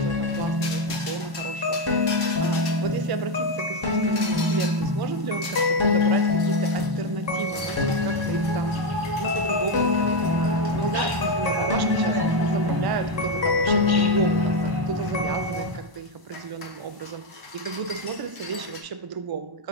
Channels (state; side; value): late; left; 1.0 ms